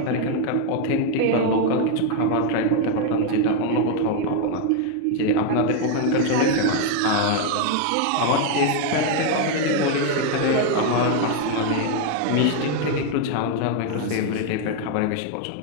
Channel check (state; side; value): different; both; correlation 0.01